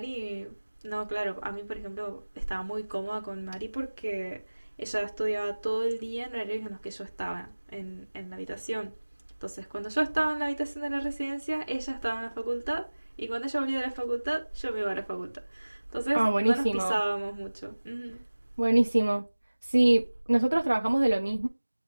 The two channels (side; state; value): both; inverted; correlation -1.00